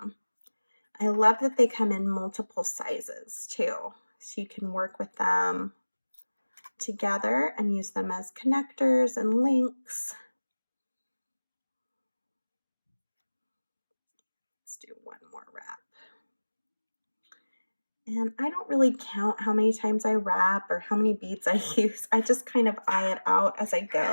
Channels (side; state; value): both; inverted; correlation -1.00